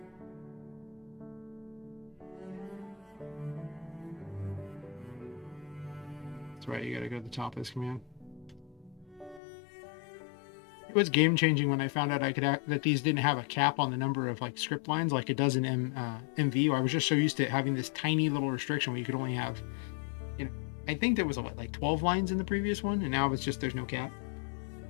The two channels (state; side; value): drops out; right; at 9.4 s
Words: That's right, you gotta go to the top of this command. It was game changing when I found out I could that these didn't have a cap on the number of like script lines like it does in MV. I was just so used to having this tiny little restriction where you could only have, you know, I think there was what, like 12 lines in the previous one, and now it's just there's no cap.